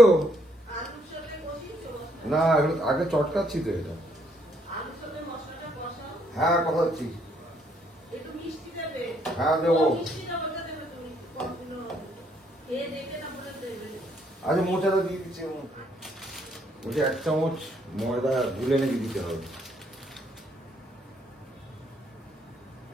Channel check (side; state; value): both; normal; correlation 0.69